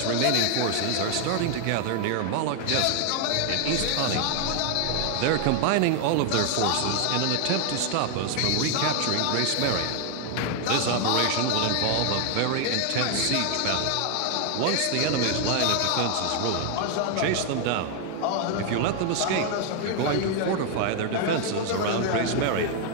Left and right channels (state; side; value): different; both; correlation 0.00